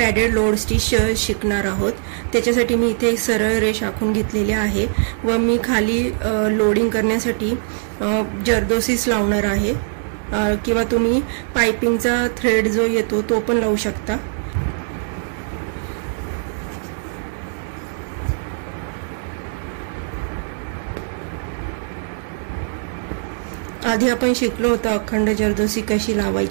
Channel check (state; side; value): silent; left; digital silence